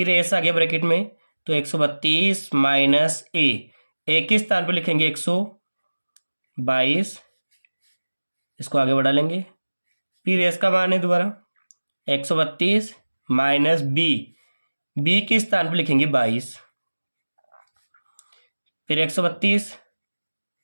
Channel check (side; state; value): both; inverted; correlation -1.00